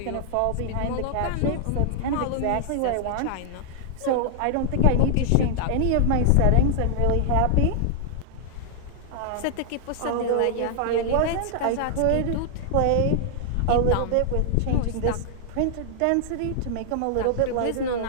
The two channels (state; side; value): different; both; correlation 0.00